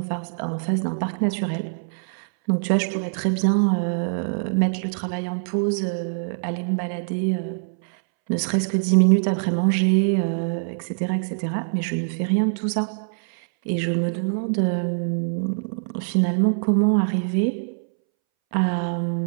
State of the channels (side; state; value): left; silent; 63 dB below the other